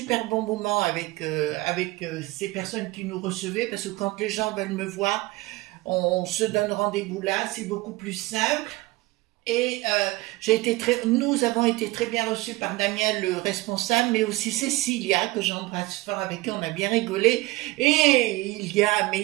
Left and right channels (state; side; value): quieter; left; 20.5 dB